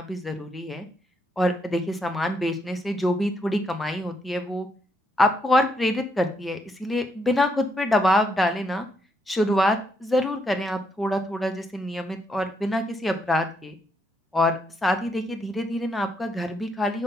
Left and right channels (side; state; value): both; normal; correlation 0.76